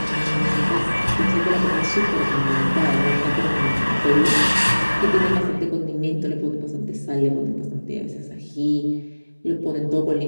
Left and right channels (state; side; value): inverted; both; correlation -1.00